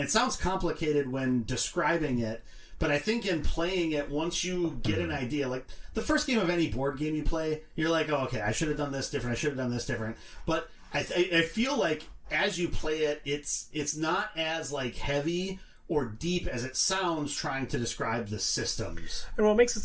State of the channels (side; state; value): both; identical; correlation 1.00